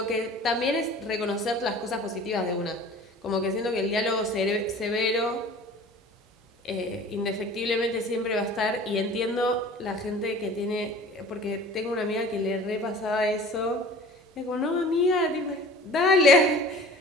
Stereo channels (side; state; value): both; normal; correlation 0.44